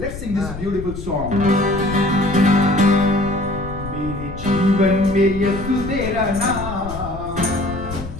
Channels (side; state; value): left; noise; rumble, 10 dB below the sound